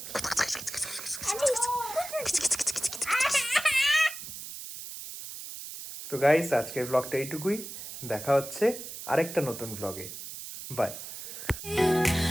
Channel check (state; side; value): noise; right; hiss, 10 dB below the sound